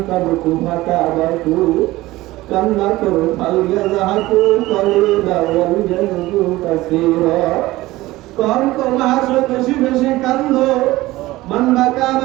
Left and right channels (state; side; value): quieter; left; 18.1 dB